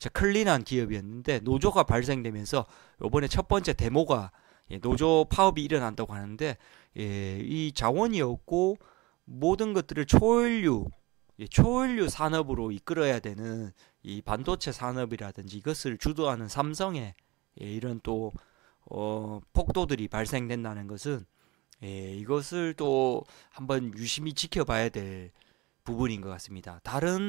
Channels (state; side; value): quieter; left; 22.4 dB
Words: 클린한 기업이었는데, 노조가 발생되면서 이번에 첫 번째 데모가 노조 파업이 일어난다고 하는데, 이 자원이 없고 모든 것들을 초연료 산업으로 이끌어야 되는 이 반도체 산업이라든지 이것을 주도하는 삼성의 이런 또 폭도들이 발생된다는 것은 이것을 또 한번 유심히 지켜봐야 될 부분인 것 같습니다.